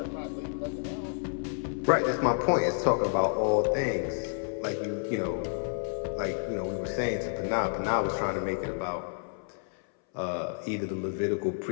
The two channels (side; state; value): right; silent; 58 dB below the other